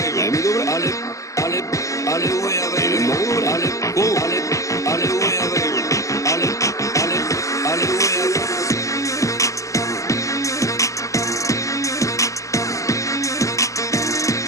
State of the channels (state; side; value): late; right; 0.16 ms